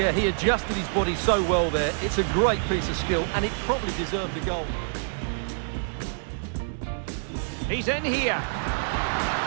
he adjusted his body so well there. It's a great piece of skill, and it probably deserved the goal. He's in here.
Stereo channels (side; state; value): left; silent; digital silence